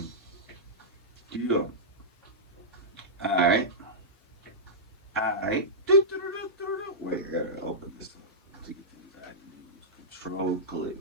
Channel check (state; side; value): normal; both; correlation -0.13